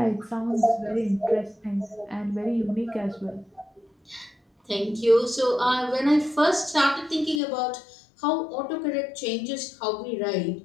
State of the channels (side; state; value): right; drops out; at 7.4 s